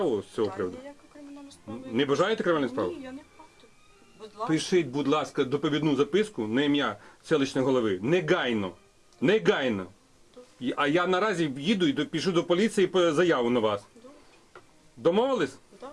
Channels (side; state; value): both; identical; correlation 1.00